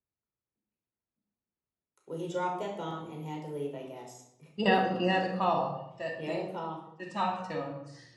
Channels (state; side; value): identical; both; correlation 1.00